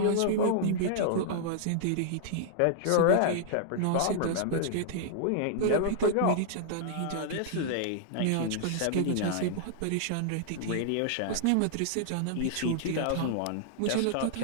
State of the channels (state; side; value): different; both; correlation -0.01